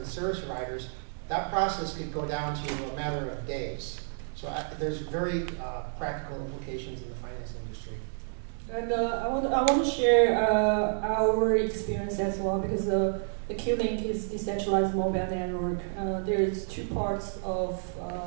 service providers, that process could go down to a matter of days. So there's very practical implications in the finance industry. And I want to share our experience as well, because the Qlink is decentralized mobile network. There's two parts of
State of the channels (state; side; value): silent; left; digital silence